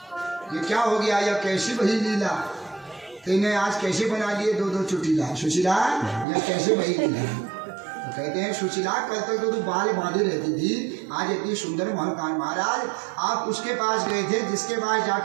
ये क्या हो गया, यह कैसी बही लीला, तेने आज कैसे बना लिए दो दो चुटीला। सुशीला यह कैसे बही लीला। तो कहते हैं सुशीला कल तक तो तू बाल बांधे रहती थी, आज इतनी सुंदर महलकान। महाराज आप उसके पास गए थे जिसके पास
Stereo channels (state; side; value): drops out; left; at 6.2 s